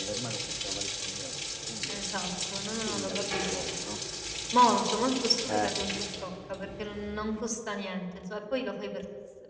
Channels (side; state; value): both; identical; correlation 1.00